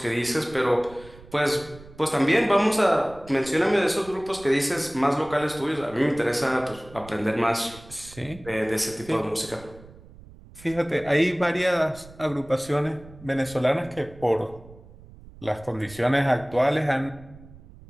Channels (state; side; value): noise; right; rumble, 20 dB below the sound